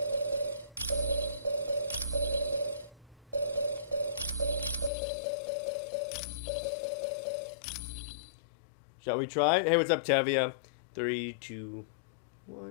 Shall we try? Hey, what's up, Tevia? 3, 2,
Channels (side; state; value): right; drops out; at 4.9 s